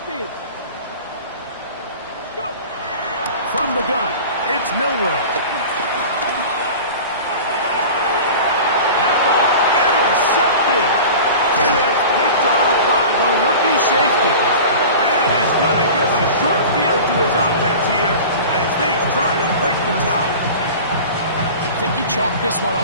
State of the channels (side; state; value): both; inverted; correlation -0.36